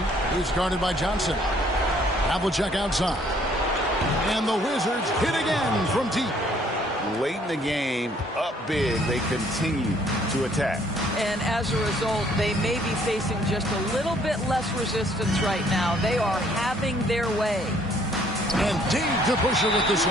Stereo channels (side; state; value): both; normal; correlation 0.62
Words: He's guarded by Johnson. Havlicek outside. And the Wizards hit again from deep. Late in the game, up big, they continue to attack. And as a result, they may be facing just a little bit less resistance right now. They are having their way. And Dave DeBuscher with the